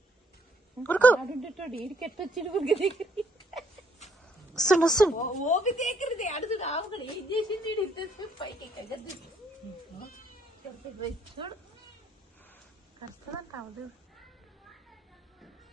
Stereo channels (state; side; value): normal; both; correlation 0.68